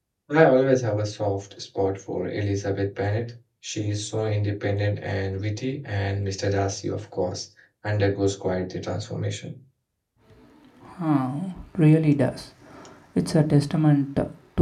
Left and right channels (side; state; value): both; identical; correlation 1.00